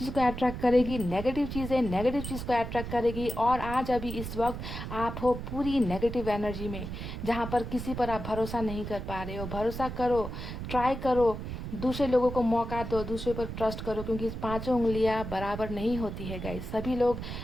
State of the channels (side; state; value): right; noise; rumble, 7 dB below the sound